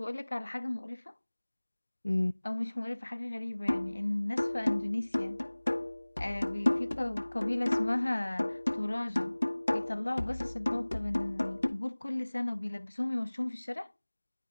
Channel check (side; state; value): both; inverted; correlation -1.00